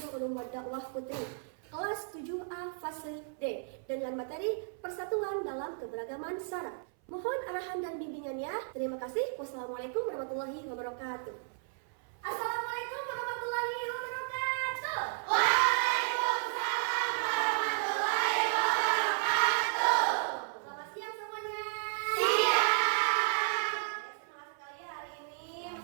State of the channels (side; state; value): left; silent; 55 dB below the other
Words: Ulum Dakwah Putri kelas 7A fase D dengan materi persatuan dalam keberagaman syarat. Mohon arahan dan bimbingannya. Terima kasih. Wassalamualaikum warahmatullahi wabarakatuh. Assalamualaikum warahmatullahi wabarakatuh. Waalaikumsalam warahmatullahi wabarakatuh. Selamat siang semuanya. Siang. Semangat sekali hari ini